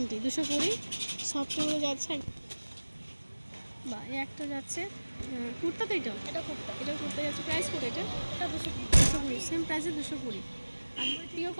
সফটগুলো যাচ্ছে। বা এই একটা যাচ্ছে কুর্তা, তো এটা কুর্তা যাচ্ছে। প্রাইস কত এটা? এটা 220, সেম প্রাইসে 220। আর পিওর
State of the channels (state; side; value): inverted; both; correlation -1.00